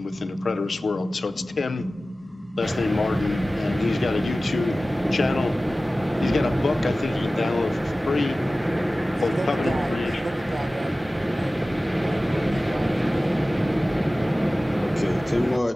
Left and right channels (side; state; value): both; normal; correlation 0.96